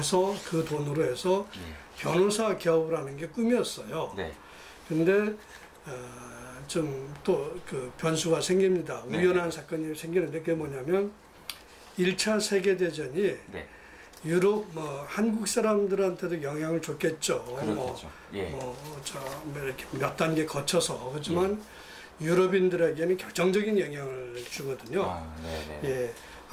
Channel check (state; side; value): identical; both; correlation 1.00